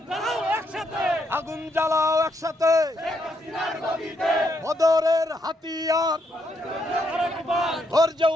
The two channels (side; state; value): both; normal; correlation 0.76